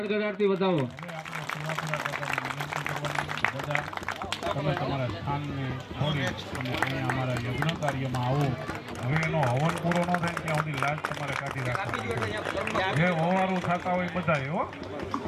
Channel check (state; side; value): identical; both; correlation 1.00